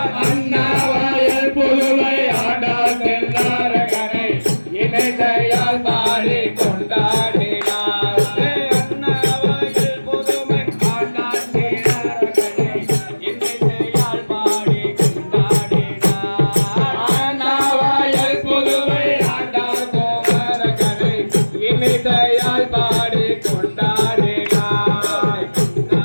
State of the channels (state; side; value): inverted; both; correlation -1.00